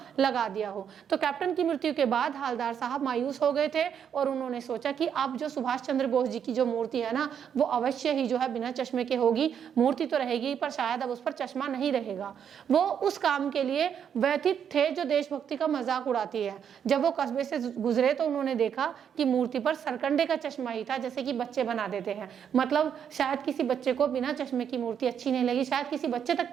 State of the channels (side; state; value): left; quieter; 8.2 dB